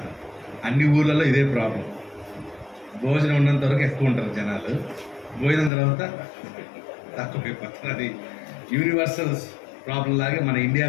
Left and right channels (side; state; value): right; drops out; at 5.7 s